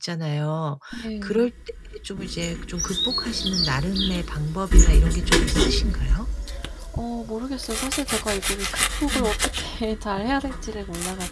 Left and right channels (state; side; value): identical; both; correlation 1.00